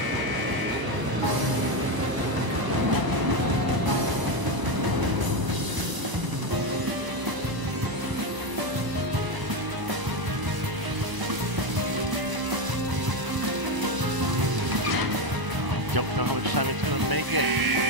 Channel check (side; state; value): left; late; 1.0 ms